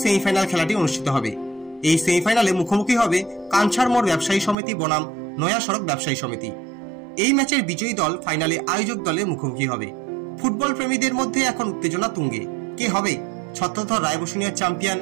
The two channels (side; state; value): left; drops out; at 4.5 s